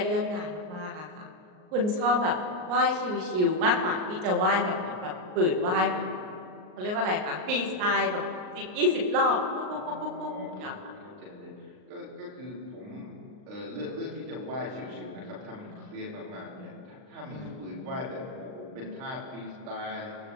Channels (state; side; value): late; left; 38 ms